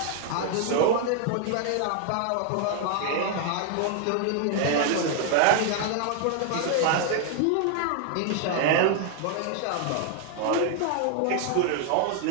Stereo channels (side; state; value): both; different; correlation 0.00